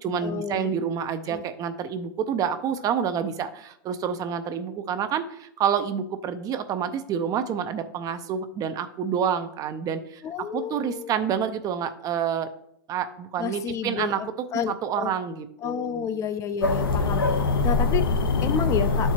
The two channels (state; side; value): normal; both; correlation 0.03